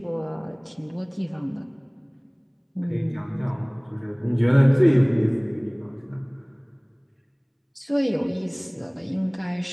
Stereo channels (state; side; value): identical; both; correlation 1.00